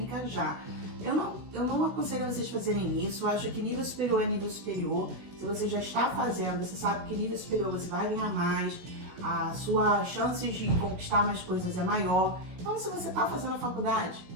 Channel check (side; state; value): left; late; 16 ms